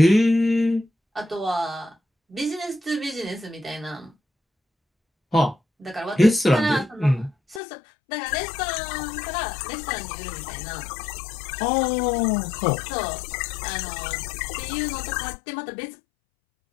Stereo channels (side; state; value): right; drops out; at 7.6 s